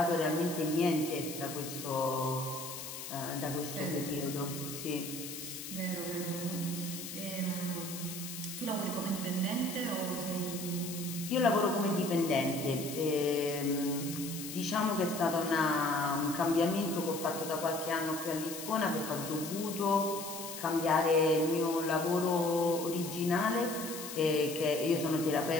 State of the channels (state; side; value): noise; left; hiss, 9 dB below the sound